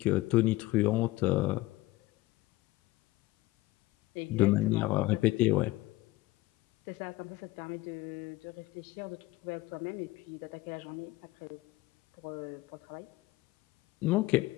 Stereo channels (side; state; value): right; quieter; 18.8 dB